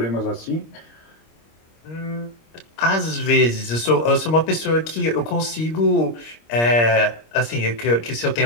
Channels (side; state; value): right; late; 26 ms